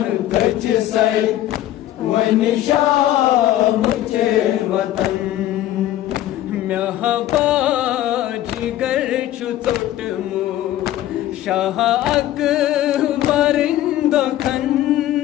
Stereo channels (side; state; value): right; quieter; 13.5 dB